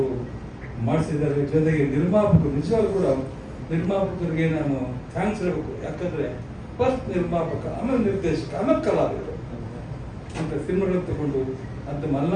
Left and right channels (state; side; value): identical; both; correlation 1.00